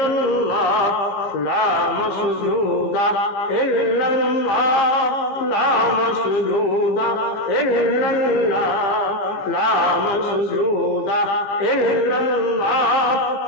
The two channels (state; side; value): late; right; 15 ms